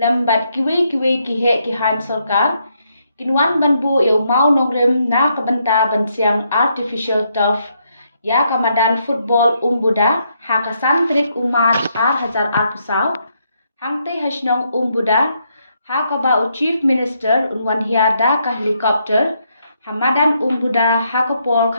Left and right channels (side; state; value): both; inverted; correlation -0.76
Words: Kiwi Kihe Kihan Sorkar, Kinwan Banbu Mau Nongrim Na Kabanta Bansiang Artificial Turf, Ya Kamadan Football Umbuda, Hakasan Trik Umar Hazar Arpusau, Hangte Hashnong Umbuda, Hakaba Chief Minister Unwan Da ka helicopter, Hamadan Umbuda Hakapol